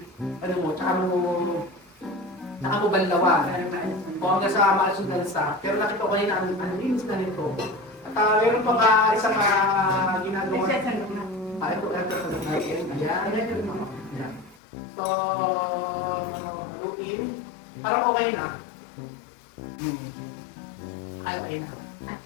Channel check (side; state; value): right; drops out; at 14.6 s